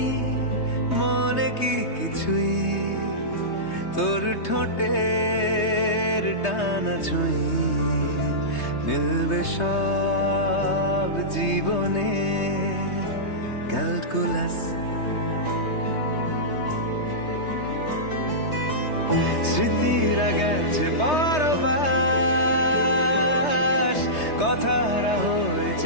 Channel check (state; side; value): late; right; 3.2 ms